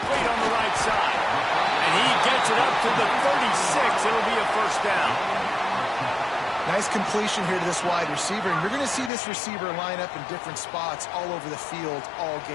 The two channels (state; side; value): drops out; right; at 9.1 s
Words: on the right side. And he gets it up to the 36. It'll be a first down. Nice completion here to this wide receiver. And you're going to see this receiver line up in different spots all over the field all